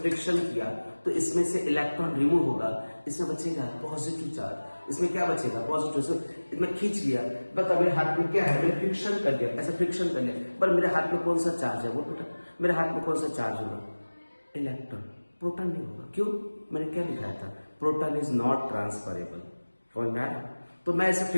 किया, तो इसमें से इलेक्ट्रॉन रिमूव होगा, इसमें बचेगा पॉजिटिव चार्ज, इसमें क्या बचेगा पॉजिटिव, इसमें खींच लिया, बता मेरे हाथ में क्या है, मैंने फ्रिक्शन कर दिया, ऐसा फ्रिक्शन कर लिया, पर मेरे हाथ में कौन सा चार्ज है, बोल बेटा मेरे हाथ में कौन सा चार्ज होगा, इलेक्ट्रॉन, प्रोटॉन नहीं होगा। क्यों, मैंने क्या लिखा था, प्रोटॉन इज नॉट ट्रांसफरेबल, समझ में आया। तो मैं ऐसे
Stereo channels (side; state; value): both; inverted; correlation -1.00